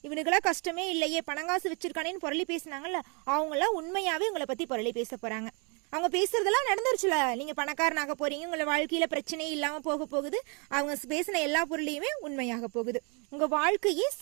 இவனுக்கெல்லாம் கஷ்டமே இல்லையே, பணங்காசு வச்சிருக்கானேன்னு பொருளி பேசினாங்கல்ல, அவங்களாம் உண்மையாவே உங்களை பத்தி பொருளி பேச போறாங்க. அவங்க பேசுறதெல்லாம் நடந்துருச்சுல, நீங்க பணக்காரனாக போறீங்க, உங்களை வாழ்க்கையில பிரச்சனையே இல்லாம போக போகுது. அவங்க பேசின எல்லா பொருளையுமே உண்மையாக போகுது. உங்க வாழ்க்கையே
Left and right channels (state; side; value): quieter; left; 34.1 dB